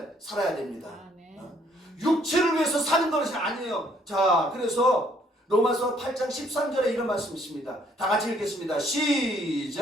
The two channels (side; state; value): both; normal; correlation 0.65